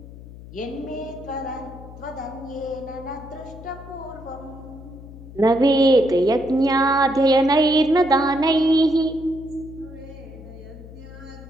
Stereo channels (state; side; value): noise; left; hum, 16 dB below the sound